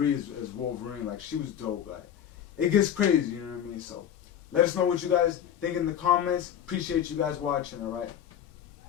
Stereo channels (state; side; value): quieter; right; 9.5 dB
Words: as Wolverine. Like, she was dope. Like, it gets crazy. You know what I mean? So, let us know what you guys think in the comments. Appreciate you guys watching. All right,